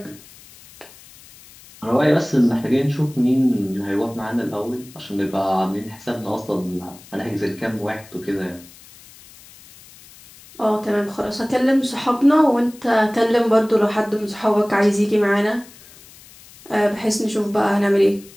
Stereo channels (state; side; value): noise; left; hiss, 22 dB below the sound